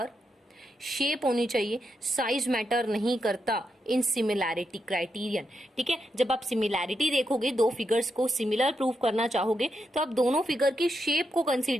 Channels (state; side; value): normal; both; correlation 0.84